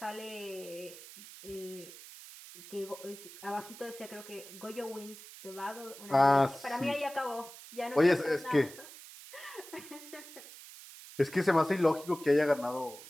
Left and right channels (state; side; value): noise; right; hiss, 16 dB below the sound